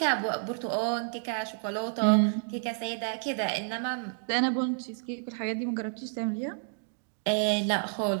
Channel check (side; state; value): left; silent; digital silence